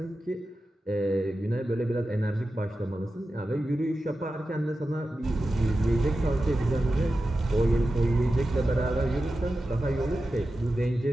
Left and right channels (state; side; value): normal; both; correlation 0.92